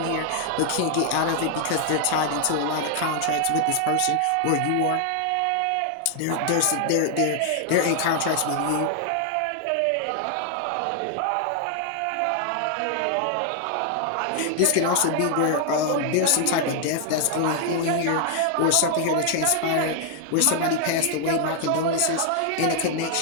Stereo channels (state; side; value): different; both; correlation 0.00